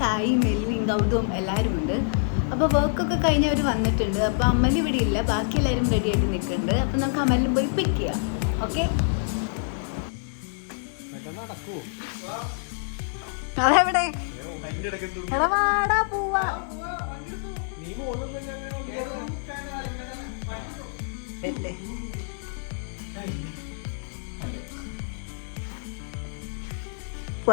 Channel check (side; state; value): right; silent; 60 dB below the other